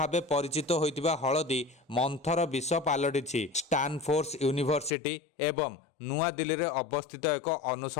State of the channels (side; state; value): right; drops out; at 4.9 s